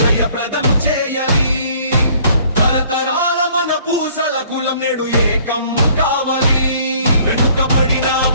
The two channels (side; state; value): both; inverted; correlation -0.58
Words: జయప్రదం చేయాలి తరతరాల మన పూసల కులం నేడు ఏకం కావాలి వెనుకబడిన